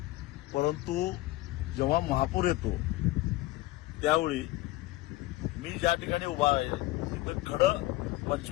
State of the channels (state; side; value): quieter; right; 18.1 dB